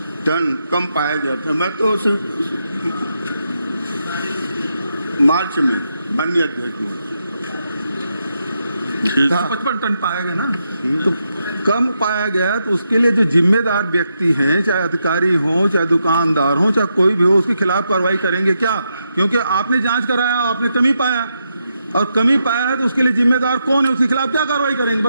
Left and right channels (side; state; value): both; inverted; correlation -0.83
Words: टन कम पाया गया था। मैं तो मार्च में, माननीय अध्यक्ष महोदय, 55 टन पाया गया ना, तो कम पाया गया तो उसके लिए जो जिम्मेदार व्यक्ति हैं, चाहे अधिकारी हो, चाहे दुकानदार हो, चाहे कोई भी हो, उसके खिलाफ कार्रवाई करेंगे क्या? क्योंकि आपने जांच कराया, आपने कमी पाया और कमी पाया है तो उसके लिए जिम्मेदार कौन है, उसके खिलाफ क्या कार्रवाई करेंगे?